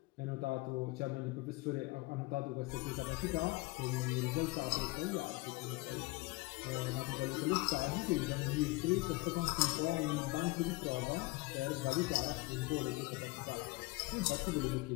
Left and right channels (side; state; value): right; quieter; 23.2 dB